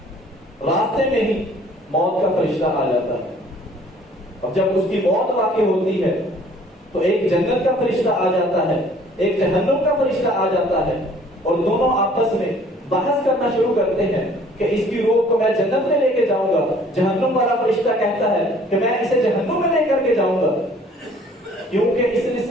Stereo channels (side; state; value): both; normal; correlation 0.55